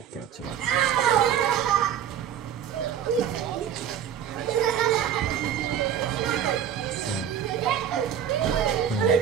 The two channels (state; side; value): quieter; left; 9.3 dB